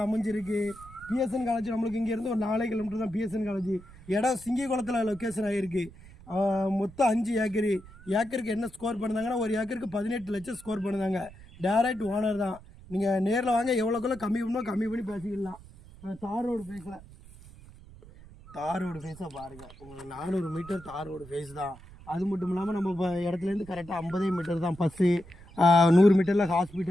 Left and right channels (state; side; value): noise; right; rumble, 20 dB below the sound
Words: அமைஞ்சிருக்கு. பிஎஸ்என் காலேஜ் நம்மளுக்கு இங்கேருந்து ஒரு 4 கிலோமீட்டர் தான் பிஎஸ்என் காலேஜ். இடம் சிங்கிகுளத்தில் லொக்கேஷன் ஆகிருக்கு. மொத்தம் 5 ஏக்கரு. ஏக்கருக்கு என்ன ஸ்கோர் பண்ணுறாங்கன்னா ஒரு ஏக்கருக்கு 18 லட்சம் ஸ்கோர் பண்ணுறாங்க. டைரக்ட் ஓனர் தான். நீங்கள் நேரில் வாங்க, எவ்வளோக்குள்ள கம்மி பண்ணி பேசிக்கலாம். தார் ரோடு ஃபேஸாக பாருங்கள். உங்களுக்கு 400 மீட்டர் தார் ரோடு ஃபேஸ் தான். அது மட்டும் இல்லாமல் நம்ம இப்போ இடத்துலேருந்து கரெக்டாக 50 மீட்டர் தான் பஸ்ஸு. 100 மீட்டரில்